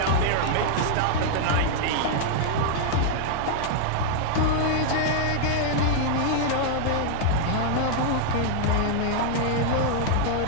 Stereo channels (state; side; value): different; both; correlation 0.00